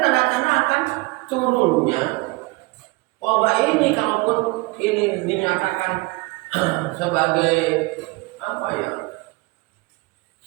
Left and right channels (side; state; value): left; quieter; 24.4 dB